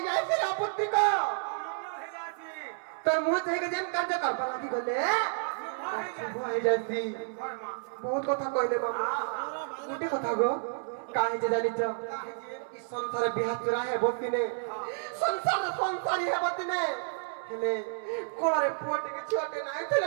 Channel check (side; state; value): left; silent; 57 dB below the other